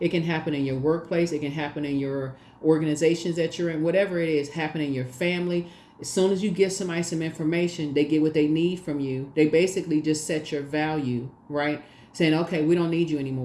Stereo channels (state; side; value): identical; both; correlation 1.00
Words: can happen in your workplace. It can happen in your organizations that you're in. Whatever it is, happen in your family. As soon as you give somebody some information, they get what they need from you. They basically just set your value, right? Saying, okay, we don't need you